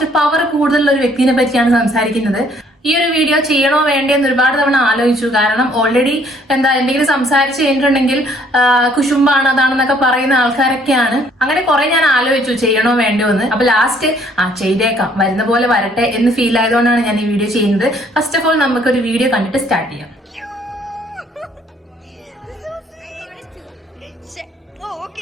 പവർ കൂടുതലുള്ള ഒരു വ്യക്തിയെ പറ്റിയാണ് സംസാരിക്കുന്നത്. ഈ ഒരു വീഡിയോ ചെയ്യണോ വേണ്ടേന്ന് ഒരുപാട് തവണ ആലോചിച്ചു. കാരണം ഓൾറെഡി എന്തെങ്കിലും സംസാരിച്ച് കഴിഞ്ഞിട്ടുണ്ടെങ്കിൽ കുശുമ്പാണ് അതാണെന്നൊക്കെ പറയുന്ന ആൾക്കാരൊക്കെയാണ്. അങ്ങനെ കുറെ ഞാൻ ആലോചിച്ചു ചെയ്യണോ വേണ്ടോ എന്ന്. അപ്പൊ ലാസ്റ്റ് ചെയ്തേക്കാം, വരുന്ന പോലെ വരട്ടെ എന്ന് ഫീൽ ആയതുകൊണ്ടാണ് ഞാൻ ഈ വീഡിയോ ചെയ്യുന്നത്. ഫസ്റ്റ് ഓഫ് ഓൾ നമുക്കൊരു വീഡിയോ കണ്ടിട്ട് സ്റ്റാർട്ട് ചെയ്യാം.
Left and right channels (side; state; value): both; normal; correlation 0.62